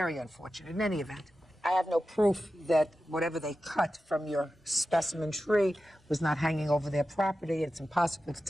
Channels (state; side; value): normal; both; correlation 0.93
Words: unfortunate. In any event, I have no proof that whatever they cut from your specimen tree was not hanging over their property. It's impossible to